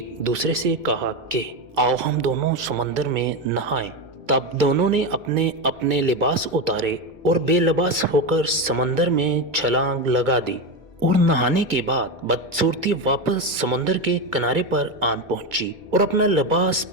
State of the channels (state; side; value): late; left; 2.2 ms